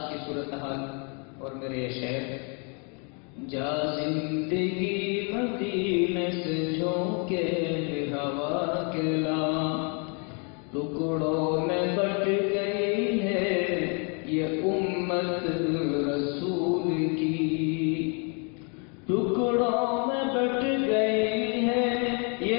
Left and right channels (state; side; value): quieter; right; 37.0 dB